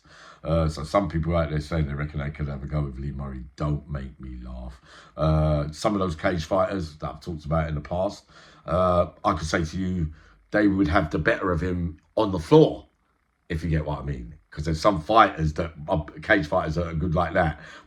So some people out there saying they reckon they could have a go with Lee Murray. Don't make me laugh. Some of those cage fighters that I've talked about in the past, I could say to you, they would have the better of him on the floor, if you get what I mean. Because there's some fighters that are cage fighters that are good like that,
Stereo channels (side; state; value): both; identical; correlation 1.00